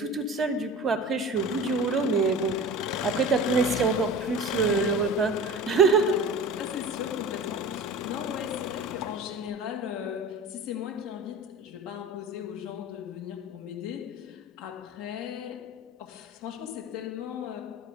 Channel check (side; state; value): both; normal; correlation 0.36